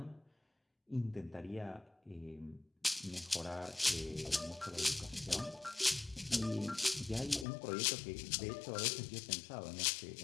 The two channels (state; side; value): drops out; right; at 7.5 s